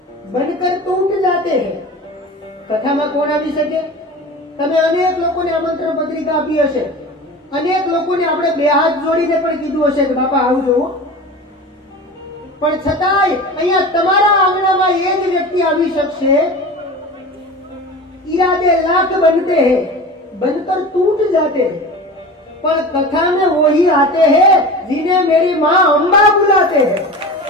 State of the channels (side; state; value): both; normal; correlation 0.33